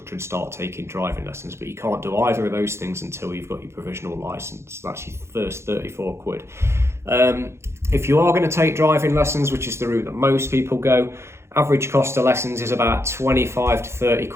and start taking driving lessons. But you can't do either of those things until you've got your provisional licence. That's your first 34 quid. If you are going to take driving lessons, which is the route that most people go, average cost of lessons is about 25 to 30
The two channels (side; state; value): left; late; 0.13 ms